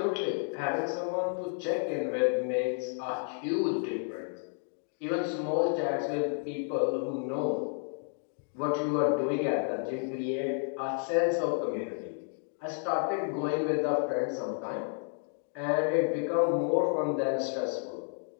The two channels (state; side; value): silent; right; 57 dB below the other